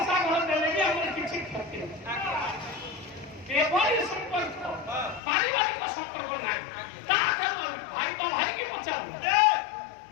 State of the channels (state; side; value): drops out; right; at 5.2 s